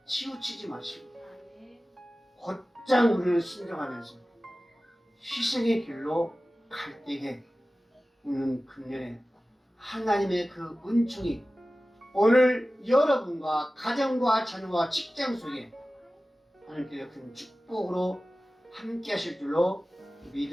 치우치지 마시고 곧장 우리를 순종하면서 희생의 길로 갈 때에 우리는 금년에 하나님의 그 은총이 오늘 여러분과 가정과 자녀와 직장 속에 하나님께서 큰 축복으로 함께 하실 줄로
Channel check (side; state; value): both; normal; correlation 0.96